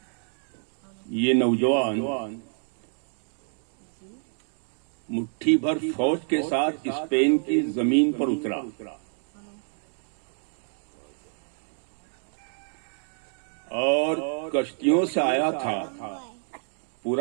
یہ نوجوان مٹھی بھر فوج کے ساتھ اسپین کی زمین پر اترا. اور کشتیوں سے آیا تھا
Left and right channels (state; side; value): silent; left; digital silence